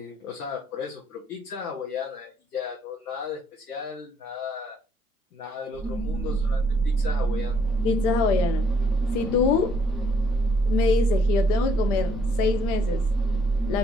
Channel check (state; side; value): normal; both; correlation 0.67